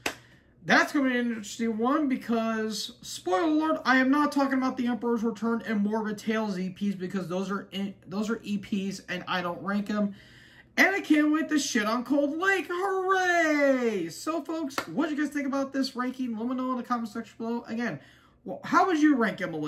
That's going to be an interesting one because, spoiler alert, I am not talking about The Emperor's Return and Morbid Tales EPs because those are EPs and I don't rank them. And I can't wait to shit on Cold Lake. Hooray! So, folks, what do you guys think about this ranking? Let me know in the comment section below. Again, well, how would you rank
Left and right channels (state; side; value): identical; both; correlation 1.00